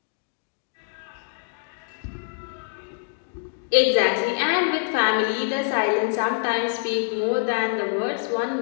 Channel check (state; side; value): silent; right; digital silence